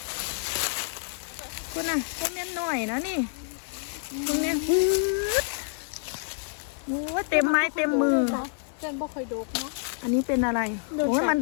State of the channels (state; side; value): silent; right; digital silence